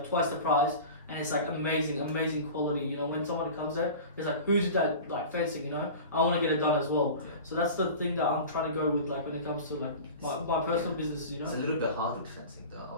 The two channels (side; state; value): both; inverted; correlation -0.35